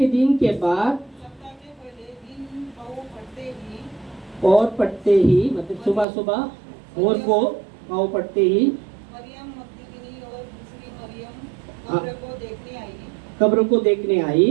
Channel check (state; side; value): drops out; left; at 6.1 s